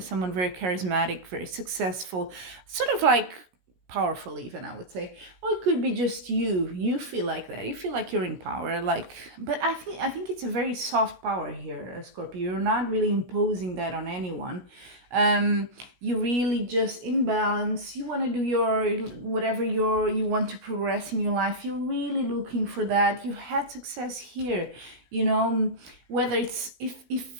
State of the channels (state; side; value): late; left; 17 ms